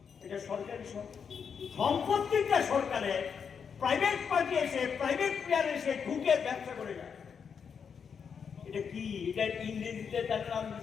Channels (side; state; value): right; quieter; 6.6 dB